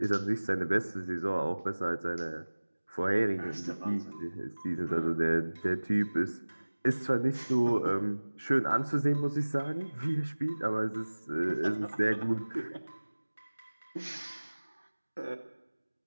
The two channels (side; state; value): both; inverted; correlation -1.00